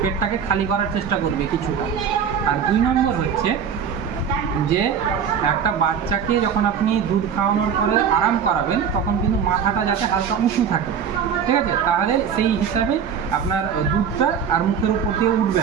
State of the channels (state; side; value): quieter; left; 7.5 dB